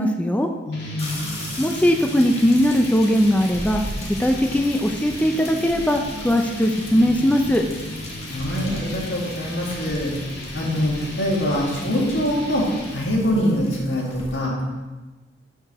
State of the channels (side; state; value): both; normal; correlation 0.78